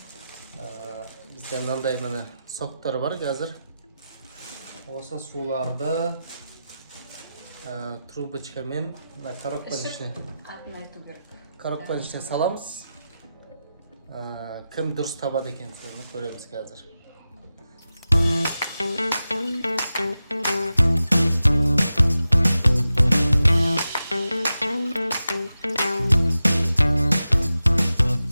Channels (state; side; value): inverted; both; correlation -0.92